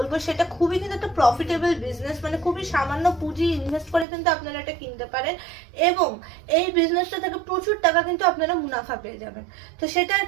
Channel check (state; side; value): drops out; left; at 4.0 s